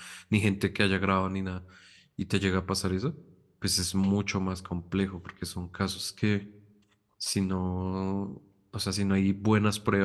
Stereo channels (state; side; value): identical; both; correlation 1.00